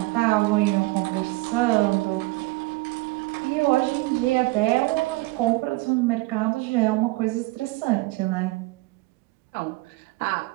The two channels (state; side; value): quieter; left; 21.7 dB